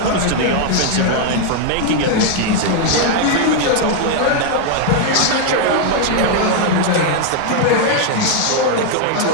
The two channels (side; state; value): both; different; correlation 0.00